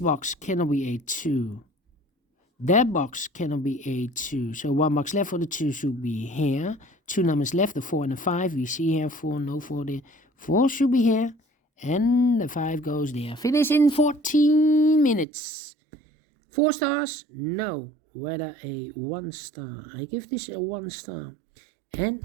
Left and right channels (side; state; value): left; drops out; at 15.2 s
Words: cannot be a 2. That box cannot be a 2. So 1 box left for the 2 should be here. 2 numbers left, the 4 and the 5. We see here 4, no 4 there. 4 should be here. And the 5 goes there. Finish in 14 minutes. 4 stars? No. Whether a 1 star. I give this a 1 star.